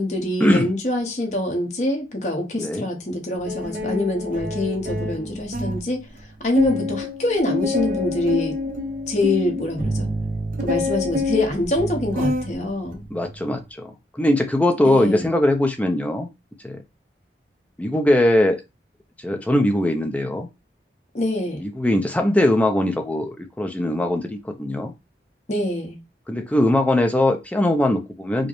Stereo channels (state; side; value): normal; both; correlation 0.78